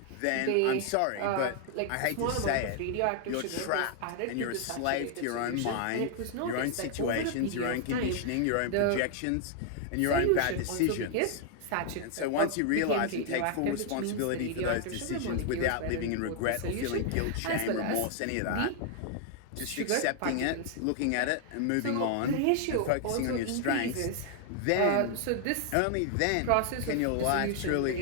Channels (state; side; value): different; both; correlation 0.00